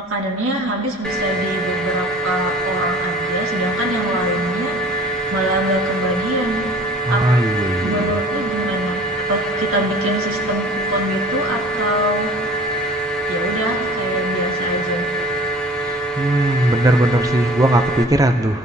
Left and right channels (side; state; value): both; normal; correlation 0.47